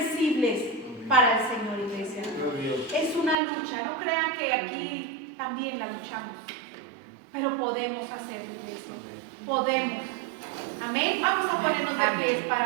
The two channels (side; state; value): left; drops out; at 3.4 s